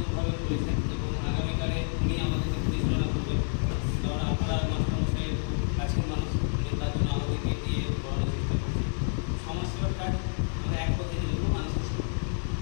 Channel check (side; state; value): right; silent; 59 dB below the other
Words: করেছেন এবং আগামীকালে উনি আমাদেরকে পরিচালনা করবেন। কারণ আপনারা মাস্টারমশাইয়ের কাছের মানুষ, তার জন্য আমাদেরকে দিয়ে পড়ানোর চেষ্টা করছি। সমাজসেবার কাজ আমরা এক পথে জন্য মানুষের সেবা,